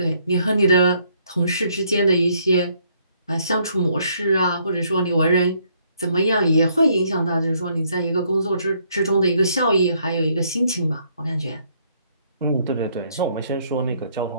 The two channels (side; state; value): both; inverted; correlation -0.69